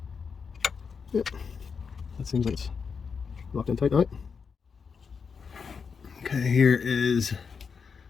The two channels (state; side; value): quieter; right; 5.8 dB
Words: Yep, that seems like it's locked in tight now. Okay, here is